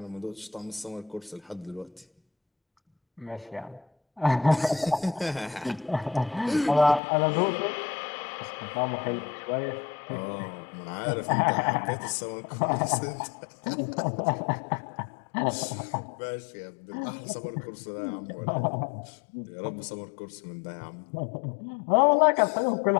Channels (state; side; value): drops out; right; at 7.0 s